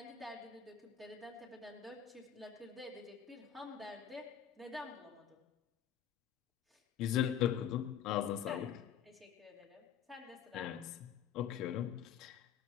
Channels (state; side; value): quieter; right; 9.1 dB